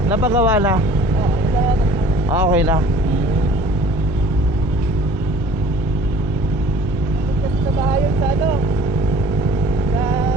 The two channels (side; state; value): both; normal; correlation 0.49